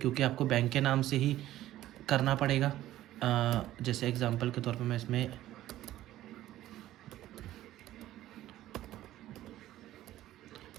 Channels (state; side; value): quieter; left; 14.2 dB